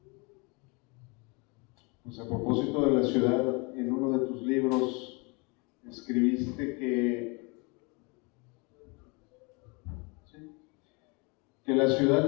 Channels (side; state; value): right; quieter; 30.2 dB